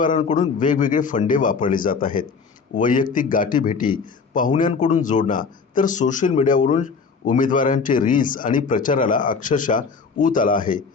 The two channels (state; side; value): quieter; right; 5.2 dB